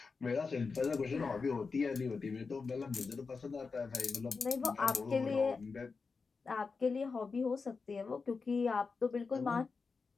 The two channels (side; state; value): right; quieter; 4.7 dB